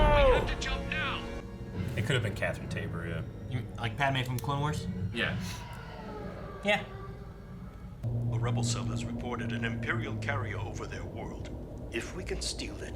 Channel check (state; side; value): identical; both; correlation 1.00